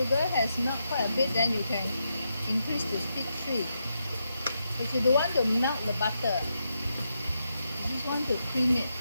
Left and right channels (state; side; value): inverted; both; correlation -0.83